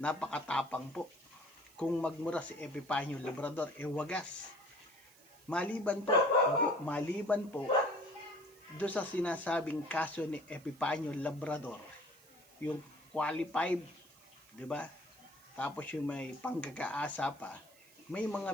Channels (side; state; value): right; noise; hiss, 25 dB below the sound